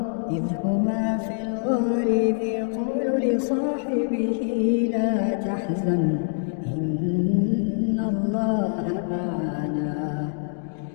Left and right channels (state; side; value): silent; right; digital silence